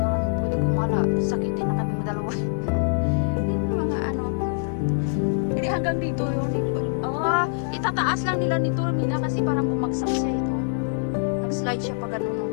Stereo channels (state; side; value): silent; right; digital silence